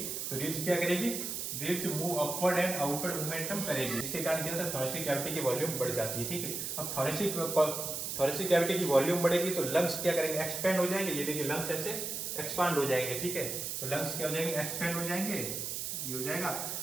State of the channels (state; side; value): noise; right; hiss, 4 dB below the sound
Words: तो रिब्स क्या करेगी, ribs move upward and outward momentum करेगी, इसके कारण क्या होता है, थोरेसिक कैविटी की वॉल्यूम बढ़ जाती है, ठीक है। अब थोरेसिक कैविटी की वॉल्यूम बढ़ेगी तो लंग्स क्या करेंगे, एक्सपेंड हो जाएंगे, ये देखिए लंग्स ऐसे एक्सपांड हो जाएंगे, ठीक है। तो लंग्स क्या हो जाएंगे, एक्सपेंड हो जाएंगे, ये हो जाएगा।